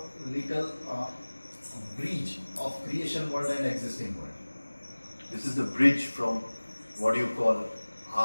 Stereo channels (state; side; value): inverted; both; correlation -1.00